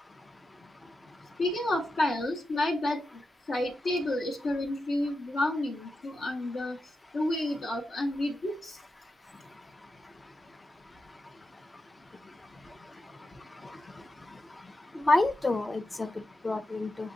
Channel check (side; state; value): both; normal; correlation 0.89